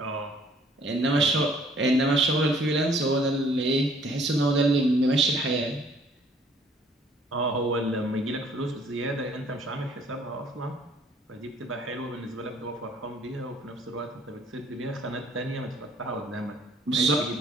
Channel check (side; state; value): both; normal; correlation 0.59